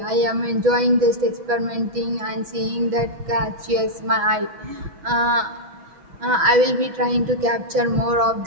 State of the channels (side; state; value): left; late; 6.1 ms